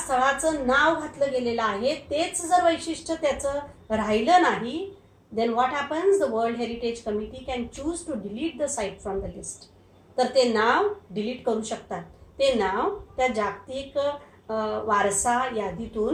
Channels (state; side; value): identical; both; correlation 1.00